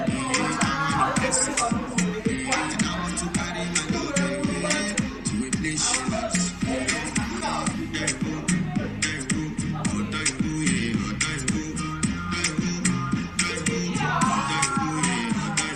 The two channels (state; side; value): identical; both; correlation 1.00